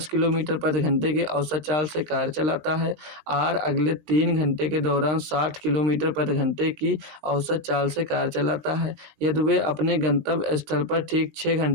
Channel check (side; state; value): left; late; 20 ms